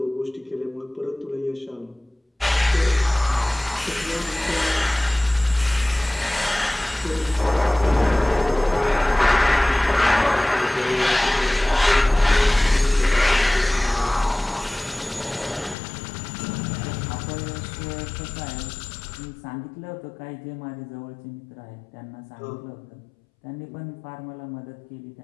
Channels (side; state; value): right; drops out; at 15.8 s